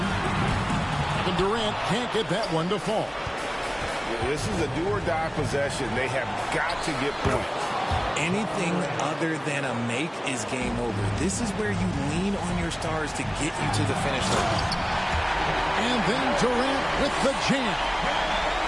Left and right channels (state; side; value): identical; both; correlation 1.00